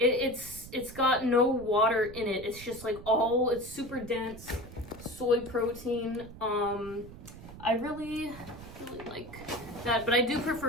got no water in it. It's just like it's super dense soy protein. I really like that, but I do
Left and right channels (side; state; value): right; noise; rumble, 15 dB below the sound